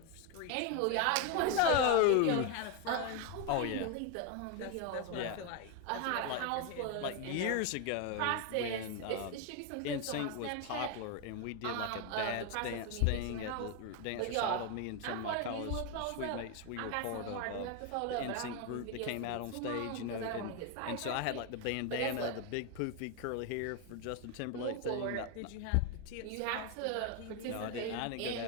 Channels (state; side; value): different; both; correlation 0.01